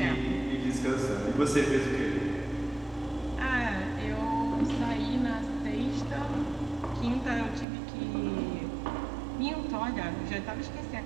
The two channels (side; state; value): left; drops out; at 7.7 s